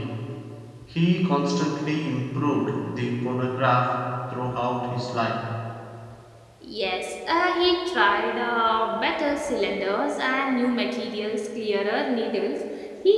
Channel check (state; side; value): identical; both; correlation 1.00